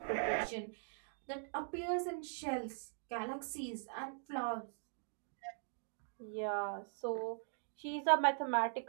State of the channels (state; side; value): silent; left; digital silence